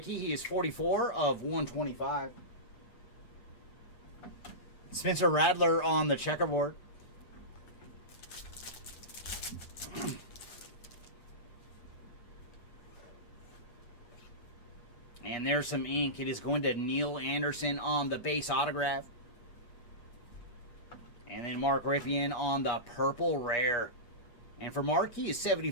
he is 44 of 125. Spencer Radler on the checkerboard. And there's some ink. It is going to Neil Anderson on the base autograph. And then Mark Ripien on the purple rare. And for Mark, he is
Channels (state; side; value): late; right; 8.4 ms